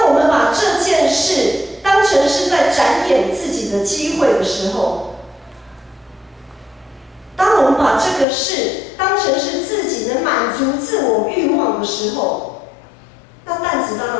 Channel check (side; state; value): right; drops out; at 8.2 s